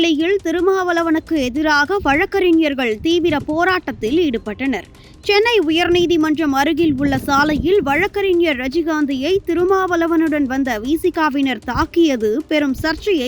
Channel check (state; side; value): identical; both; correlation 1.00